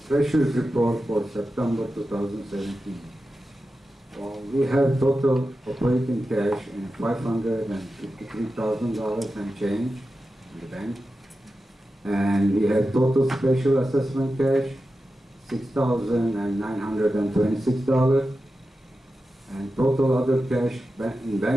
Treasurer's Report for September 2017. We have total operating cash in $553,000 and change in the bank. And we have total special assessment cash, $6,926. And total other cash in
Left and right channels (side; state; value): both; normal; correlation 0.92